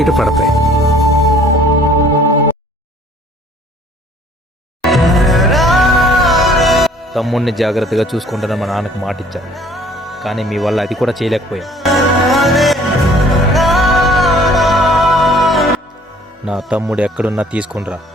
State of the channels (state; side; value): normal; both; correlation 0.55